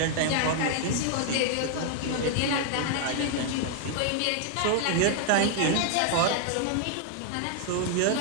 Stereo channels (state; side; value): different; both; correlation 0.00